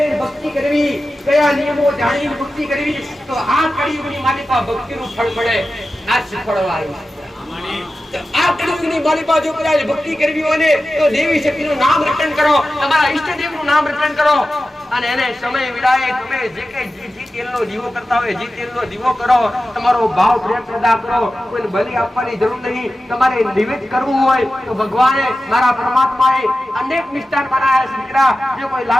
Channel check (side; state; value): both; normal; correlation 0.94